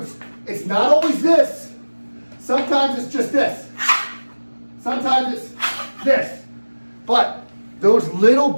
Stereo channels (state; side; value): inverted; both; correlation -1.00